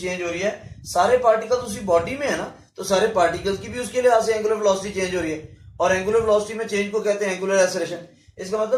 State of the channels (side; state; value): both; identical; correlation 1.00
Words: हो रही है, सारे पार्टिकल्स उसी बॉडी में है ना, तो सारे पार्टिकल्स की भी उसके लिहाज से एंगुलर वेलोसिटी चेंज हो रही है, और एंगुलर वेलोसिटी में चेंज को कहते हैं एंगुलर एक्सेलरेशन। इसका